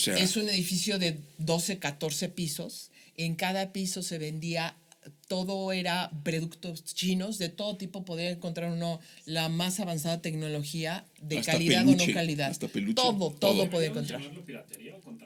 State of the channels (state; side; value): identical; both; correlation 1.00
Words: es un edificio de 12, 14 pisos. En cada piso se vendía, todo era productos chinos, de todo tipo. Podía encontrar uno la más avanzada tecnología, de hasta calidad peluche, o no calidad. Todo podía encontrar. ¿Piratería o